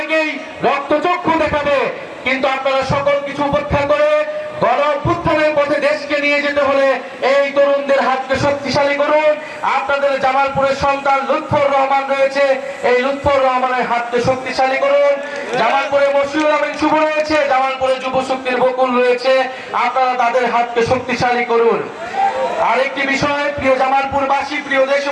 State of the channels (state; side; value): identical; both; correlation 1.00